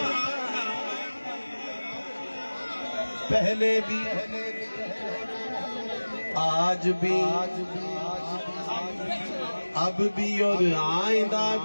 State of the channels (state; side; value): inverted; both; correlation -1.00